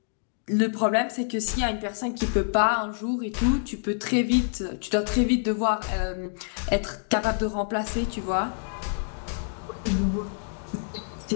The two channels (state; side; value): silent; right; digital silence